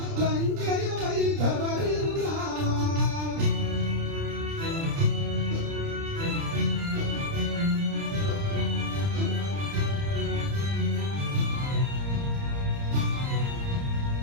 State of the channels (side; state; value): left; late; 30 ms